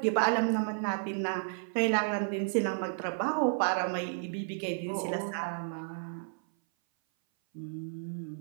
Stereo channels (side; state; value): left; silent; 56 dB below the other